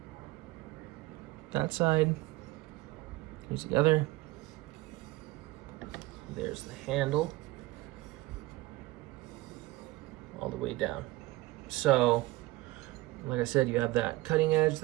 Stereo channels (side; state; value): left; quieter; 19.6 dB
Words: That side. Here's the other. There's the handle. All the way down. So like I said, you have that cutting edge,